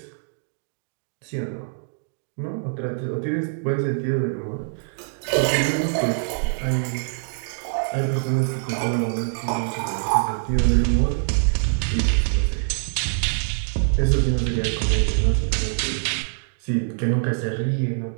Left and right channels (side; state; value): left; silent; digital silence